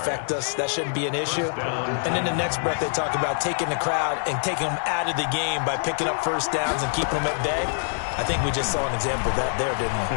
us. That shouldn't be an issue. And in the next breath, they talk about taking the crowd and taking them out of the game by picking up first downs and keeping them at bay. I think we just saw an example of that there, didn't we?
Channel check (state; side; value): silent; right; digital silence